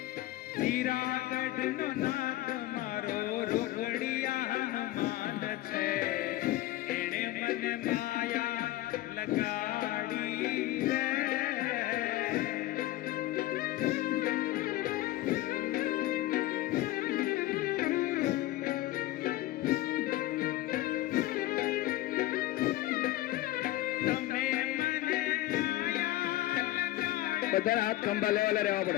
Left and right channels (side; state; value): right; quieter; 16.1 dB